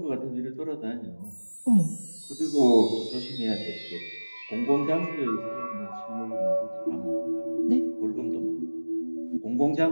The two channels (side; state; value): both; inverted; correlation -1.00